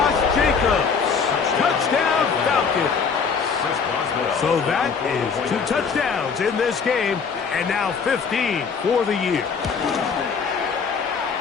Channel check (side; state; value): right; quieter; 5.8 dB